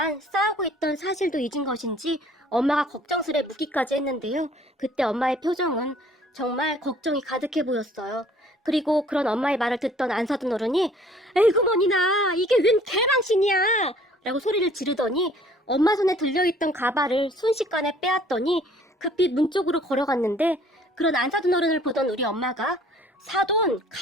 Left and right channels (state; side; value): normal; both; correlation 0.55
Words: 싸우고 있던 사실도 잊은 것인지 엄마가 걱정스레 묻기까지 했는데요. 그때 엄마의 표정은 정말 걱정이 가득해 보였어요. 그리고 그런 엄마의 말을 듣던 안 사둔 어른이 에이구머니나 이게 웬 개망신이야 라고 소리를 지르더니 엄마 손에 들려있던 가발을 순식간에 빼앗더니 급히 문 쪽으로 걸어갔는데 그런 안 사둔 어른을 보던 우리 엄마가 사돈